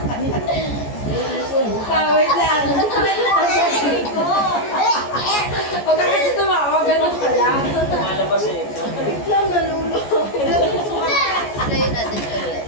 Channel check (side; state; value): right; late; 14 ms